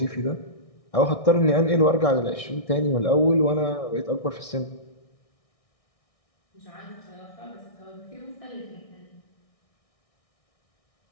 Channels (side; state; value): right; late; 1.6 ms